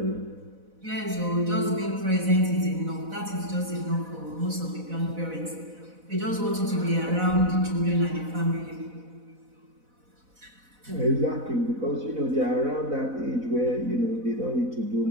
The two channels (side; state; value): left; late; 4.0 ms